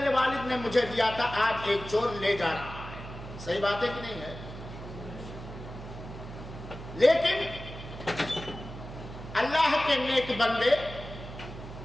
والد نے مجھے دیا تھا، آج ایک چور لے جا رہا ہے۔ صحیح بات ہے کہ نہیں ہے؟ لیکن اللہ کے نیک بندے،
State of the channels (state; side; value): noise; right; hum, 12 dB below the sound